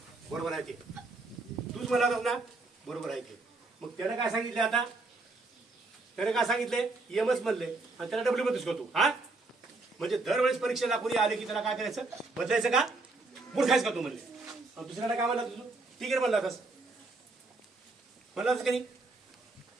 बरोबर आहे ते, तूच म्हणला होतास ना, बरोबर आहे ते. मग त्यानं काय सांगितलं, आता त्याने काय सांगितले, यमच म्हणले आणि त्याला डब्ल्यू म्हणतोस का तू. हा म्हणजे दरवेळेस परीक्षेला कोणी आले की त्याला काय करायचं, बदलायचं का, मूर्खायचं का तू म्हणले. आणि दुसऱ्याला काय म्हणला तुझं, टिगेर म्हणला होतास, म्हणला होतास का नाही.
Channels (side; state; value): left; quieter; 3.4 dB